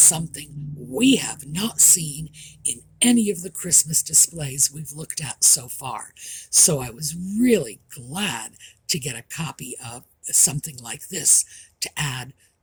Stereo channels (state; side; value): identical; both; correlation 1.00